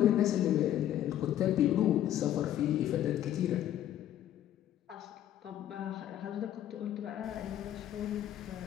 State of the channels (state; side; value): quieter; right; 11.8 dB